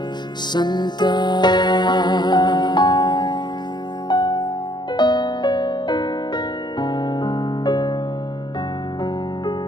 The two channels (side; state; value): right; late; 0.21 ms